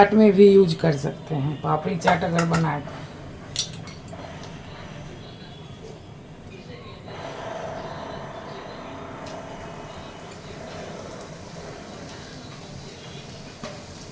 में भी यूज कर सकते हैं। पापड़ी चाट अगर बनाए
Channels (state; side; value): identical; both; correlation 1.00